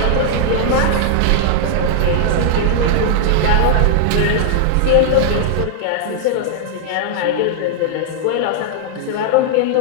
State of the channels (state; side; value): different; both; correlation -0.01